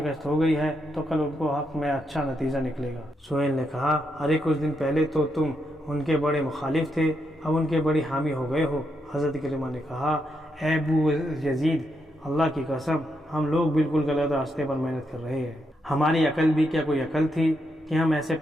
ہو گئی ہے تو کل ان کو حق میں اچھا نتیجہ نکلے گا۔ سہیل نے کہا ارے کچھ دن پہلے تو تم ان کے بڑے مخالف تھے، اب ان کے بڑی حامی ہو گئے ہو۔ حضرت اکرمہ نے کہا اے ابو یزید اللہ کی قسم ہم لوگ بالکل غلط راستے پر محنت کر رہے ہیں، ہماری عقل بھی کیا کوئی عقل تھی کہ ہم ایسے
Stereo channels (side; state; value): both; normal; correlation 0.81